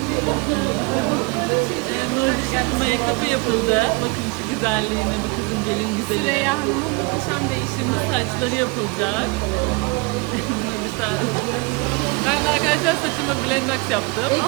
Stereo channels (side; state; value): left; quieter; 27.7 dB